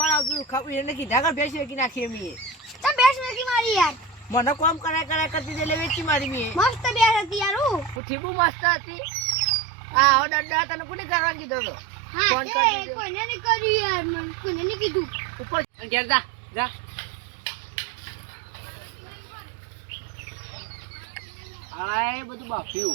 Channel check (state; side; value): drops out; left; at 8.0 s